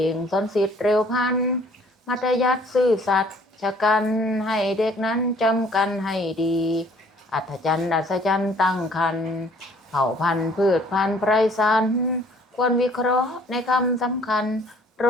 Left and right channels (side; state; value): both; normal; correlation 0.57